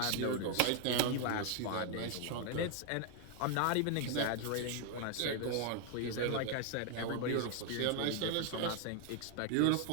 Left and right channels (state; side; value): different; both; correlation 0.00